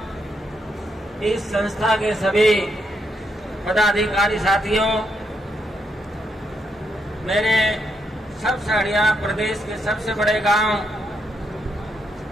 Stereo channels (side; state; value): both; normal; correlation 0.79